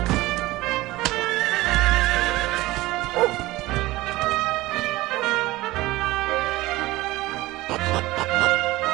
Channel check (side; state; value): left; quieter; 18.8 dB